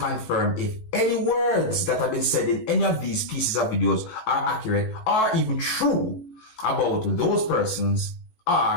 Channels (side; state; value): right; late; 19 ms